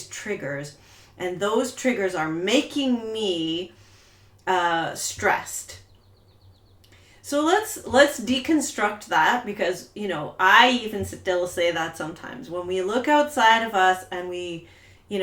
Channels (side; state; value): both; identical; correlation 1.00